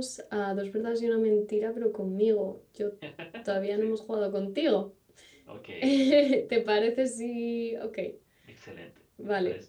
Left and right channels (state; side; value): identical; both; correlation 1.00